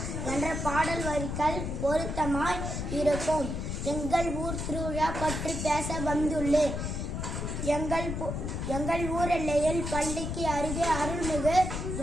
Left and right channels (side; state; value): left; noise; rumble, 3 dB below the sound